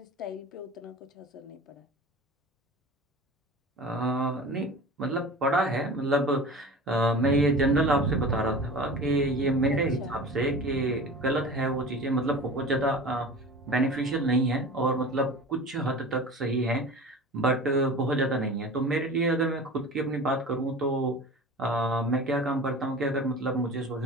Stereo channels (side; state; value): both; normal; correlation 0.36